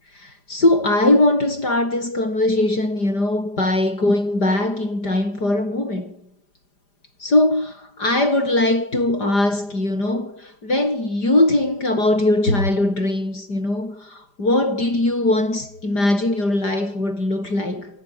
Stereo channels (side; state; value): right; late; 5.0 ms